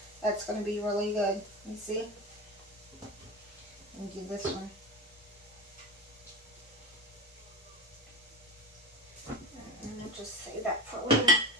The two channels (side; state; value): both; normal; correlation 0.24